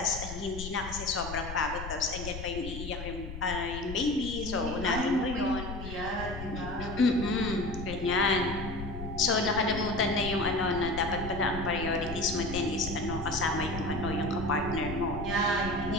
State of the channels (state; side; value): noise; left; rumble, 9 dB below the sound